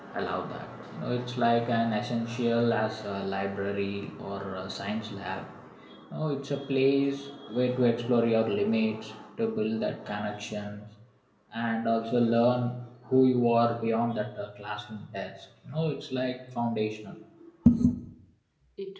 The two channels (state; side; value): identical; both; correlation 1.00